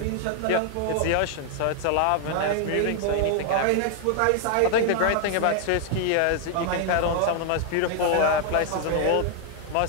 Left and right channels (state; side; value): different; both; correlation 0.00